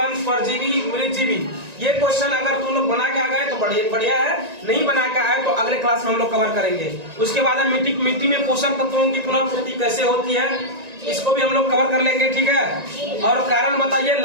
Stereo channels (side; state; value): left; late; 1.9 ms